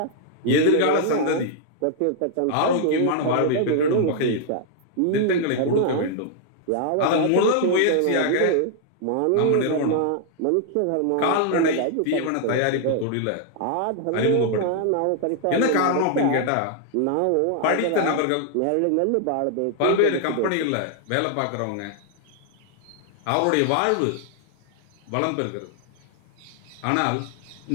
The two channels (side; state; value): both; different; correlation 0.00